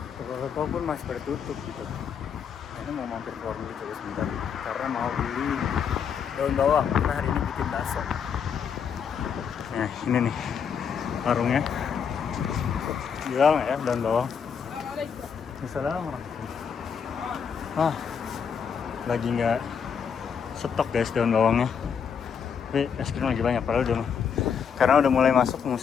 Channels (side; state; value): right; quieter; 7.0 dB